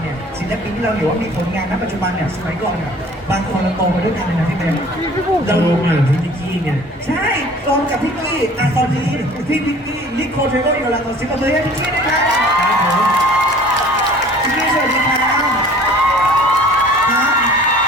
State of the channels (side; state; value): both; normal; correlation 0.49